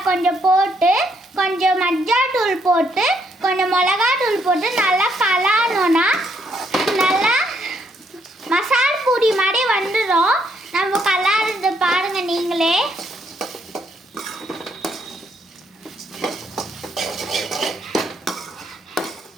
கொஞ்சம் போட்டு கொஞ்சம் மஞ்சள் தூள் போட்டு கொஞ்சம் மிளகா தூள் போட்டு நல்லா கலாடணும்னா நல்லா மசால் பூரி மாதிரி வந்துடும். நம்ம கலாடுறது பாருங்க நீங்களே.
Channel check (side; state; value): both; normal; correlation 0.73